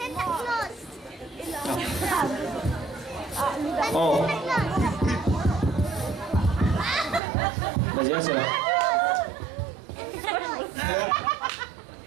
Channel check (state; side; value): drops out; left; at 7.2 s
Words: Oh. Udah jelas ya?